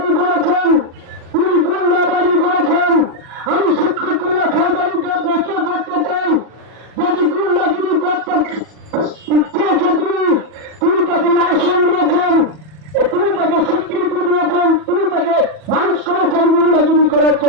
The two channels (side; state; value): left; late; 40 ms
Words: করেছেন, তিনি গুন্ডাবাদী করেছেন। আমি সিদ্দিকুল্লাহ চৌধুরীকে প্রশ্ন করতে চাই, যদি গুন্ডাগিরি করতে চেয়েছে তিনি তাকে লাইসেন্স দিয়েছেন, তিনি তাকে স্বীকৃতি দিয়েছেন, তিনি তাকে মানুষ করেছেন গুন্ডাগিরি করার